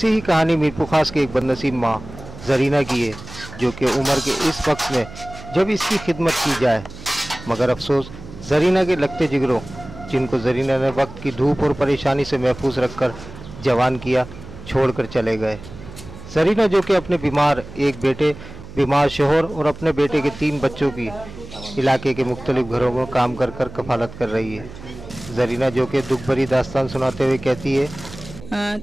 ही कहानी मीरपुर खास की एक बदनसीब माँ जरीना की है, जो कि उम्र के इस वक्त में जब इसकी खिदमत की जाए, मगर अफसोस जरीना के लगते जिगरों, जिनको जरीना ने वक्त की धूप और परेशानी से महफूज रखकर जवान किया, छोड़कर चले गए। जरीना जो कि अपने बीमार एक बेटे, बीमार शोहर और अपने बेटे के 3 बच्चों की इलाके के मुख्तलिफ घरों में काम कर कर कफालत कर रही है। जरीना जो कि दुख भरी दास्तान सुनाते हुए कहती है,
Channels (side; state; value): right; noise; hum, 15 dB below the sound